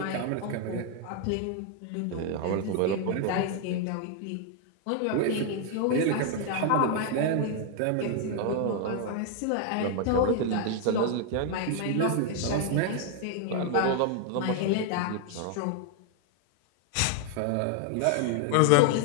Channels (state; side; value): different; both; correlation 0.00